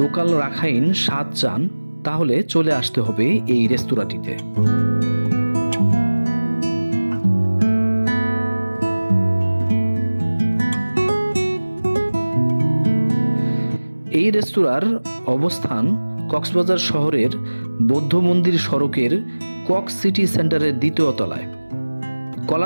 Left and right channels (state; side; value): inverted; both; correlation -1.00